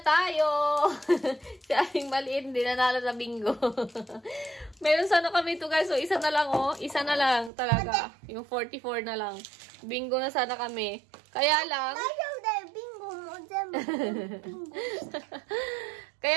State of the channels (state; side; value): drops out; left; at 7.5 s